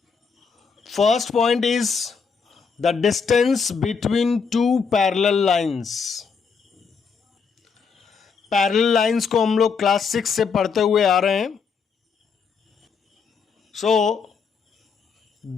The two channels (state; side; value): quieter; right; 5.6 dB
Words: First point is the distance between two parallel lines. Parallel lines को हम लोग class 6 से पढ़ते हुए आ रहे हैं।